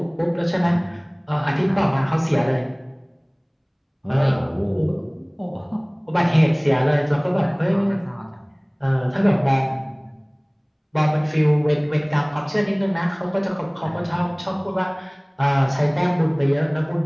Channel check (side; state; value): both; identical; correlation 1.00